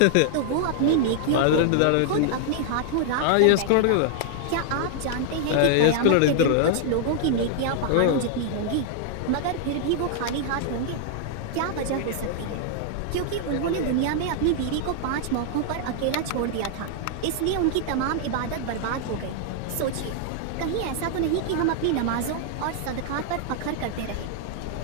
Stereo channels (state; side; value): different; both; correlation -0.01